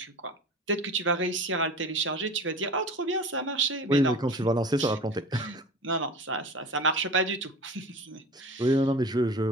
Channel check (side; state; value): both; normal; correlation 0.36